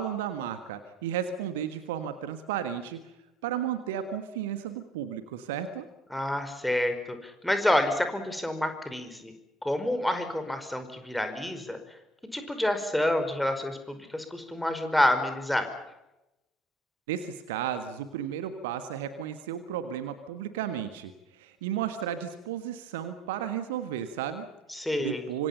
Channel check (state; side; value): normal; both; correlation 0.62